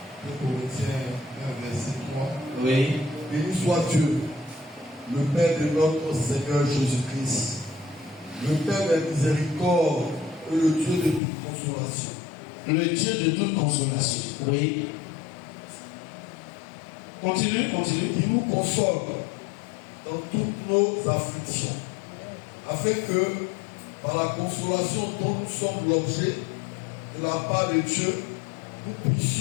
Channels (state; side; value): drops out; right; at 11.2 s